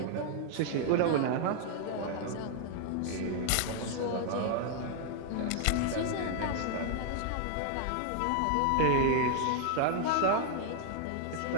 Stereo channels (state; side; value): different; both; correlation 0.00